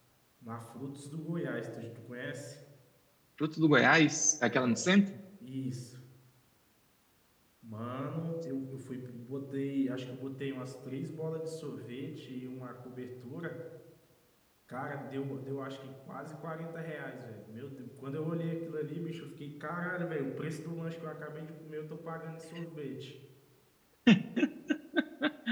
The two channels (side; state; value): both; identical; correlation 1.00